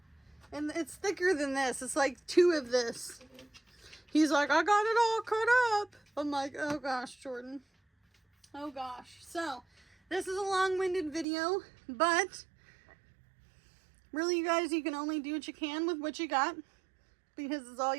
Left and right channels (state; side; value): drops out; left; at 11.2 s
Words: and it's thicker than this. It's like 2 of this. He's like, I got it all cut up. I'm like, oh gosh, Jordan. Oh gosh. So, this is a long-winded video, but really, you guys, you can only do what you can with what you got, because it's all